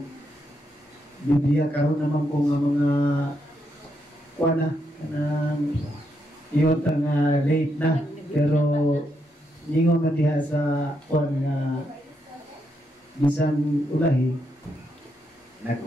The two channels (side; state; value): both; normal; correlation 0.80